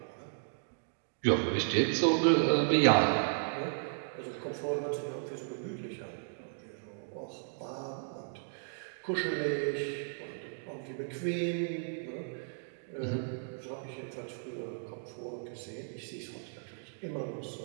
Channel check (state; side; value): silent; left; digital silence